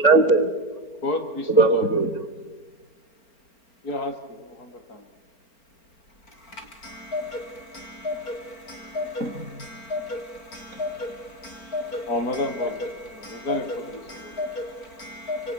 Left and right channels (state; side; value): late; right; 4.4 ms